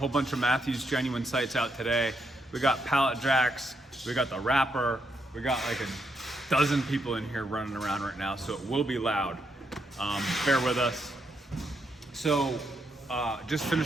bunch of Matthews Genuine sights out today. We got pallet jacks. We got the wrapper. We got like a dozen people in here running around right now, so it will be loud. Bear with us. So, just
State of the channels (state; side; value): normal; both; correlation 0.79